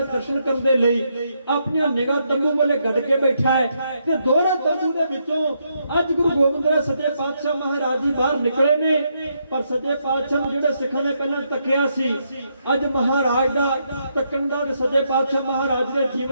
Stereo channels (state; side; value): inverted; both; correlation -0.78